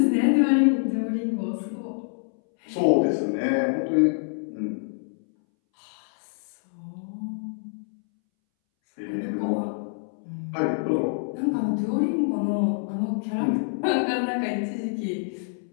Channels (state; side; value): silent; right; 61 dB below the other